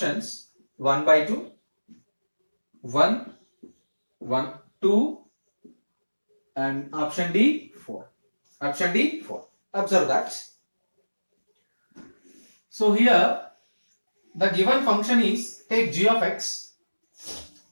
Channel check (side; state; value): both; inverted; correlation -1.00